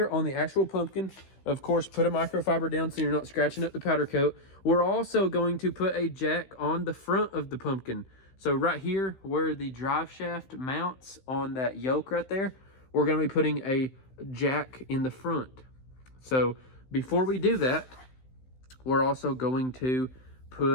on the actual pumpkin. Of course, put a microfiber down so you're not scratching up the powder coat. We're also going to put a jack on the front of the pumpkin. So right here where the drive shaft mounts on that yoke right there, we're going to be putting a jack in the front. So before we do that, we're also going to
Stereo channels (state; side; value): late; right; 15 ms